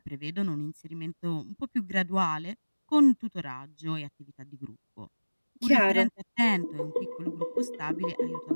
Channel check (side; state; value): both; inverted; correlation -1.00